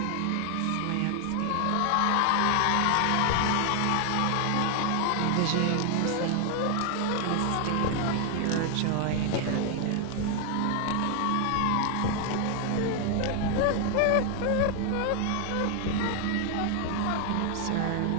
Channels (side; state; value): both; different; correlation 0.00